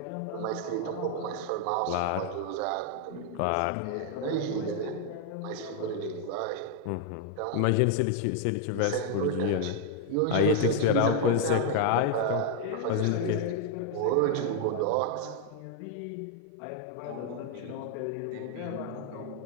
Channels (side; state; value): both; different; correlation 0.00